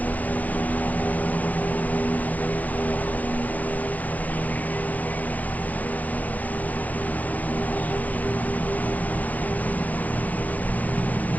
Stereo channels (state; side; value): late; right; 0.080 ms